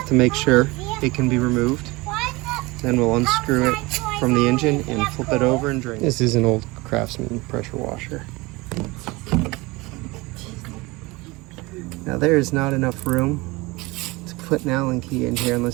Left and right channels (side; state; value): left; quieter; 23.2 dB